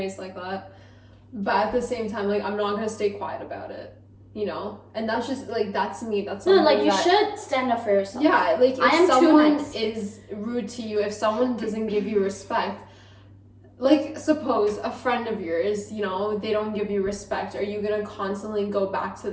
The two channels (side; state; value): both; identical; correlation 1.00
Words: like that. But at the same time, like, I'm not gonna stay quiet about it, you know? And that's just, like, that's me. That's no, like, you should stand up for yourself. Yeah, like, if someone is rude to you, if someone doesn't give you respect, like, suppose a friend of yours, you know, they don't give you respect. Are you gonna constantly go back to